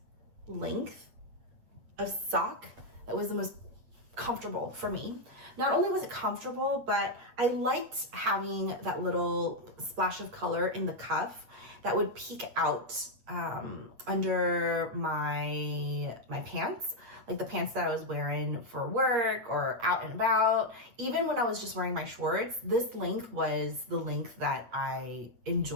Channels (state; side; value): late; left; 8.7 ms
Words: length of sock that was the most comfortable for me. Not only was it comfortable, but I liked having that little splash of color in the cuff that would peek out under my pants, like the pants that I was wearing for work or out and about. Even when I was just wearing my shorts, this length was the length that I